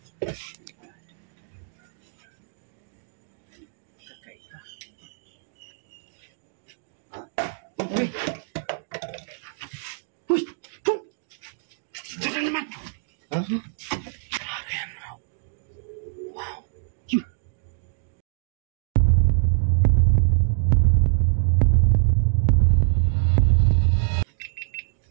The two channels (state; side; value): silent; left; digital silence